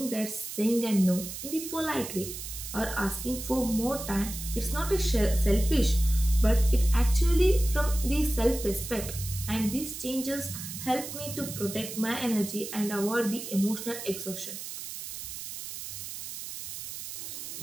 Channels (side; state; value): right; noise; hiss, 9 dB below the sound